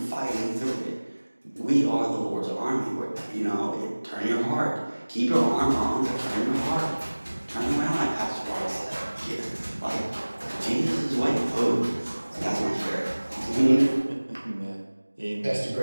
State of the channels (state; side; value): inverted; both; correlation -1.00